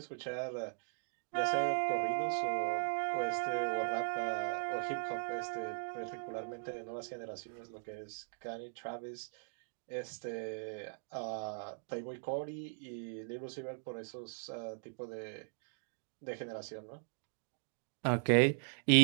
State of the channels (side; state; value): left; silent; digital silence